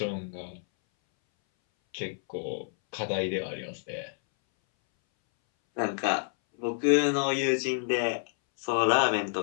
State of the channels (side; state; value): right; silent; 59 dB below the other